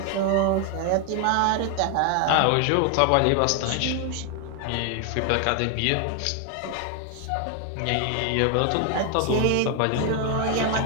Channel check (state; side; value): different; both; correlation 0.00